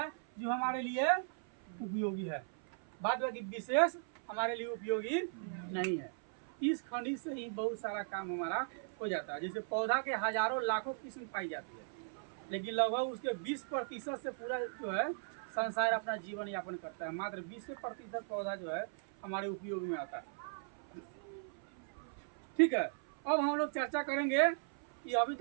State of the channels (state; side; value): silent; left; 53 dB below the other